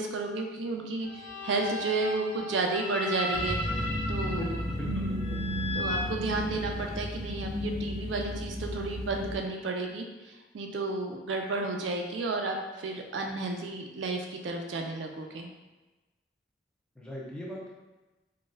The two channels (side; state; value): both; normal; correlation 0.31